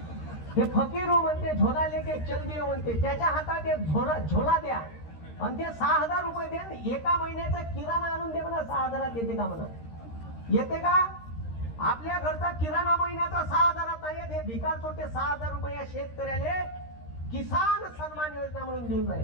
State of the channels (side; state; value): right; late; 13 ms